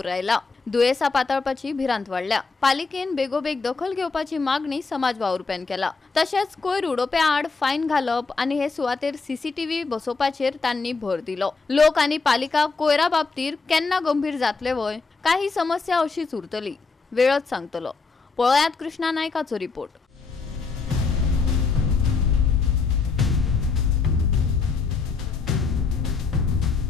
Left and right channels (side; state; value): right; quieter; 4.4 dB